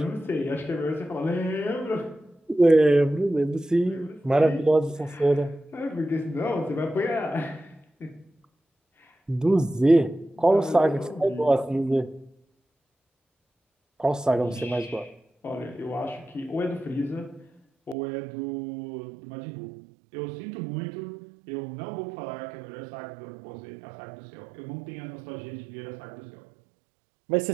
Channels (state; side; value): drops out; left; at 17.9 s